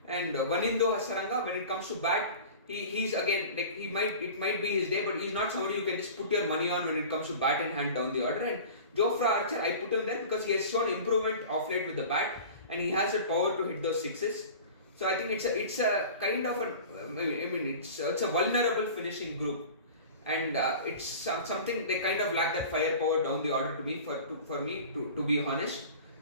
And Vanindo Hasaranga, when it comes to bat, he's again like it might be his day, but he's not somebody you can just put your money on when it comes to bat in hand down the order. And Jofra Archer, I put him there because he has shown improvement of late with the bat, and he has the power to hit those sixes. So I think it's a kind of it's a vulnerable finishing group, and it's something they kind of lack that firepower down the order to me for me to be honest.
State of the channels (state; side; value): inverted; both; correlation -0.38